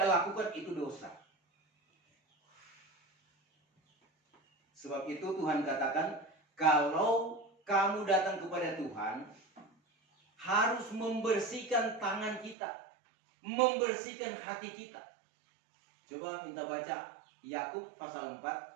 lakukan, itu dosa. Sebab itu Tuhan katakan, kalau kamu datang kepada Tuhan, harus membersihkan tangan kita, membersihkan hati kita. Coba minta baca Yakub pasal 4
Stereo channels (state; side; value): drops out; left; at 12.6 s